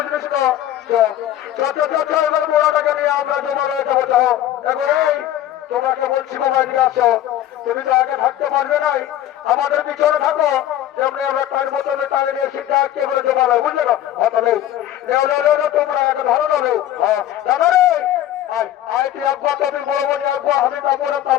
তো? এবার মোড়াটাকে নিয়ে আমরা জমা হয়ে যাবো। এখন এই তোমাকে বলছি মোবাইল নিয়ে আসো, তুমি তো আগে থাকতে পারবে নাই, আমাদের পিছনে থাকো, যেমনি আমরা টাইম বোতলে টানে নিয়ে সিটটা আটকে বলে জমা নেই, বুঝলে না? হয়তো নেই তোমরা আগে ধরো না নেও। হ্যাঁ দাদা রে আয় তুই একবার, তুমি বড় বড় একবার, আমি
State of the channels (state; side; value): quieter; right; 12.4 dB